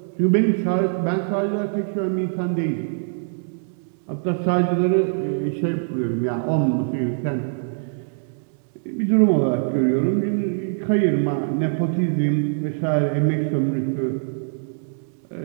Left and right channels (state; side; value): silent; left; digital silence